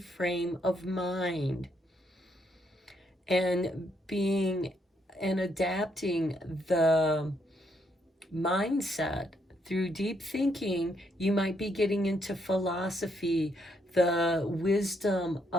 of mind. And being and adapting the mindset through deep thinking, you might be getting into philosophy, the wisdom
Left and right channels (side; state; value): both; normal; correlation 0.74